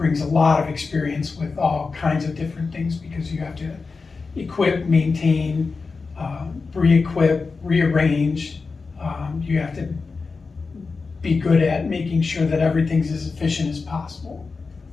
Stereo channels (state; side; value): quieter; right; 4.4 dB